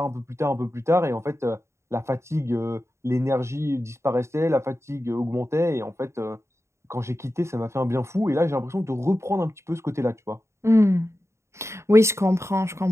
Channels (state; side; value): late; left; 0.13 ms